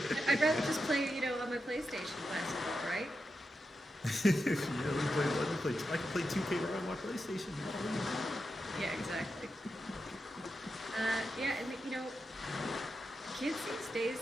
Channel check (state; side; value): normal; both; correlation 0.88